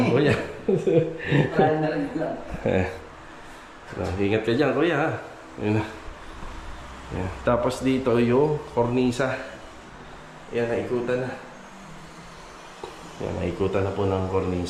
kuya. Ingat ka dyan, kuya. Ha? Yun. Yan. Tapos dito yung kornisa. Yan, naikutan na. Yan, naikutan na po ng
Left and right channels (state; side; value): identical; both; correlation 1.00